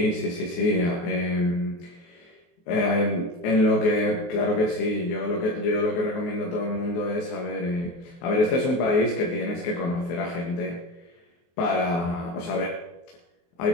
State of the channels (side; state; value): right; late; 23 ms